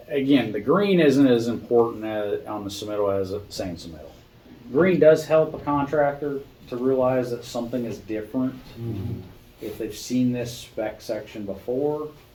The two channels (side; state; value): both; identical; correlation 1.00